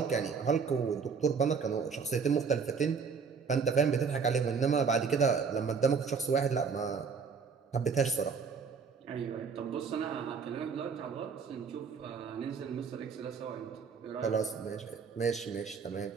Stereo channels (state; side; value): quieter; left; 5.7 dB